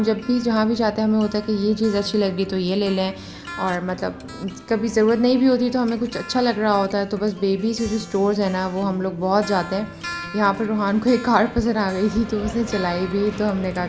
जब भी जहाँ भी जाते हैं हमें होता है कि ये चीज़ अच्छी लग रही तो ये ले लें, और मतलब कभी ज़रूरत नहीं भी होती तो हमें कुछ अच्छा लग रहा होता है तो बस बेबी से जो स्टोर्स है ना वो हम लोग बहुत जाते हैं। यहाँ पर रूहान को एक कार पसंद आ गई थी तो उसने चलाई भी, तो हमने कहा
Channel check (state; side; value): identical; both; correlation 1.00